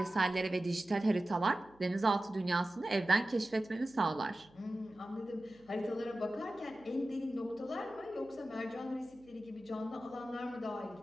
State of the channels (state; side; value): noise; right; hum, 28 dB below the sound